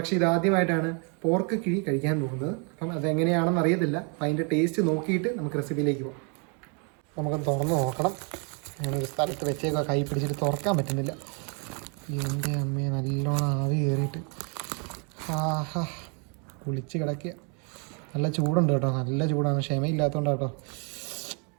ഇത് ആദ്യമായിട്ടാണ് പോർക്ക് കിഴി കഴിക്കാൻ പോകുന്നത്. അപ്പം അതെങ്ങനെയാണെന്ന് അറിയത്തില്ല. അപ്പം അതിൻ്റെ ടേസ്റ്റ് നോക്കിയിട്ട് നമുക്ക് റെസിപ്പിയിലേക്ക് പോകാം. നമുക്കൊന്ന് തുറന്ന് നോക്കണം. ഞാനൊരു സ്ഥലത്ത് വെച്ചേക്കുക, കൈ പിടിച്ചിട്ട് തുറക്കാൻ പറ്റുന്നില്ല. എൻ്റെ അമ്മയെ നല്ലോണം ആവി കയറിയിട്ട് ആഹാ കുളിച്ച് കിടക്കുക. നല്ല ചൂടുണ്ട് കേട്ടോ, നല്ല ചൂടാണ്. ക്ഷമയില്ലാത്തതുകൊണ്ട് കേട്ടോ.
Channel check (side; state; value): left; quieter; 36.5 dB